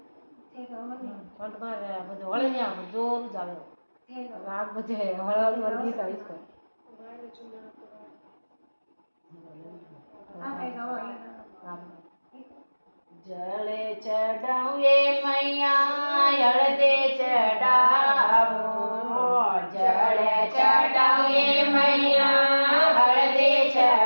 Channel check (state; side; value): inverted; both; correlation -1.00